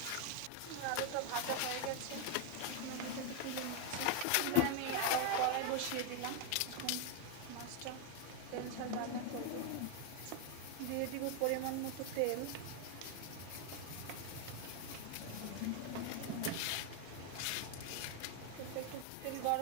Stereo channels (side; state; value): both; different; correlation 0.01